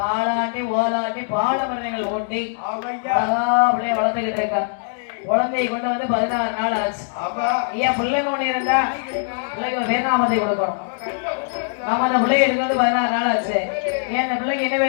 ஓலாட்டி பாலமரங்கள் ஓட்டி அப்படியே வளர்த்துக்கிட்டு இருக்கான். குழந்தையை கொண்டு வந்து 16 நாள் ஆச்சு. ஐயா பிள்ளைங்க ஒண்ணு இருந்தா பிள்ளைக்கு பேர்நாமத்தை கொடுக்கணும். ஆமா, அந்த பிள்ளைய எடுக்கிறது 16 நாள் ஆச்சு. ஏன் அந்த பிள்ளைக்கு என்ன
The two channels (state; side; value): silent; right; digital silence